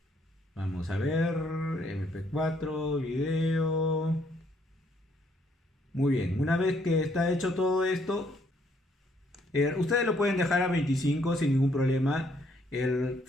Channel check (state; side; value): normal; both; correlation 0.69